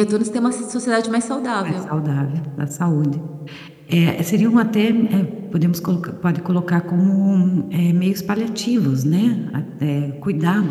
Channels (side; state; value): both; identical; correlation 1.00